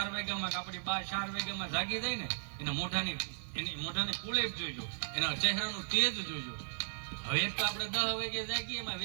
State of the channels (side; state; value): left; silent; 54 dB below the other